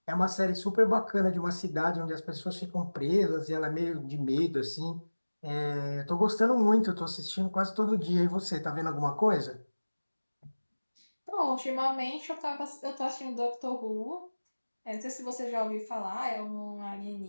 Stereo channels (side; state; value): both; inverted; correlation -1.00